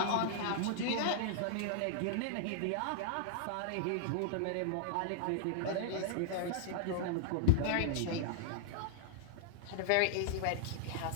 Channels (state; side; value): different; both; correlation -0.01